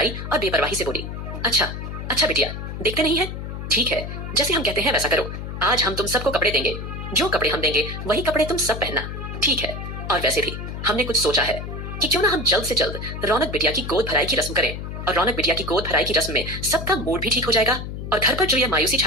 और बेपरवाही से बोली, अच्छा अच्छा बिटिया, देखते नहीं है, ठीक है, जैसे हम कहते हैं वैसा करो। आज हम तुम सबको कपड़े देंगे, जो कपड़े हम देंगे वही कपड़े तुम सब पहनना, ठीक है। और वैसे भी हमने कुछ सोचा है कि क्यों ना हम जल्द से जल्द रौनक बिटिया की गोद भराई की रस्म करें, और रौनक बिटिया की गोद भराई की रस्म में सबका मूड भी ठीक हो जाएगा और घर पर जो यह मायूसी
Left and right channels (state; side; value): noise; left; hum, 7 dB below the sound